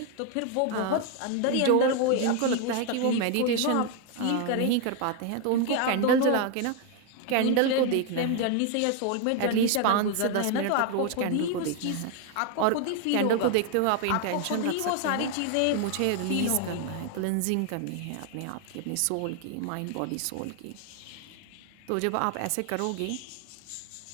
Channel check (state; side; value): different; both; correlation 0.01